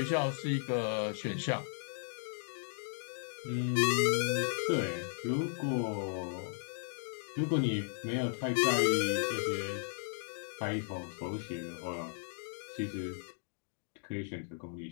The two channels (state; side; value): silent; right; digital silence